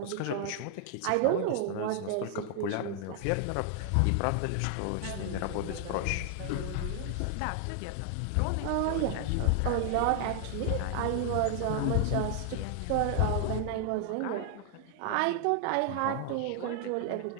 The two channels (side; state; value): both; different; correlation 0.00